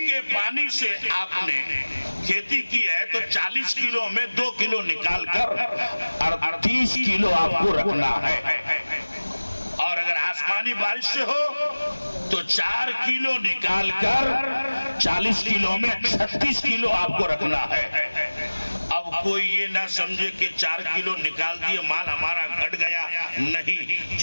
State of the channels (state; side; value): inverted; both; correlation -1.00